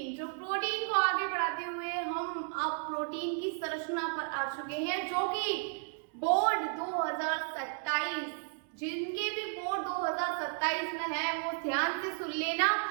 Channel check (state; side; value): silent; left; 55 dB below the other